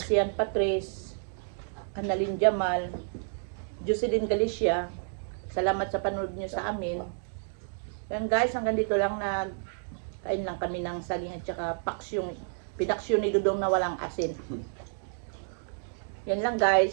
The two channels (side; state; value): left; silent; digital silence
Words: Patrice, Annalyn Jamal, Jocelyn Galicia. Salamat sa panood nyo sa amin. Yan guys, hanggang dito lang na kain lang kami ng saging at saka paksyong, pinaksyon ni Dudong na walang asin. Yan lang